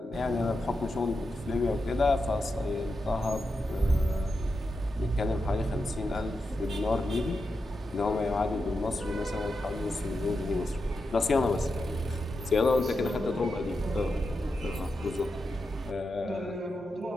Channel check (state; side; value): normal; both; correlation 0.88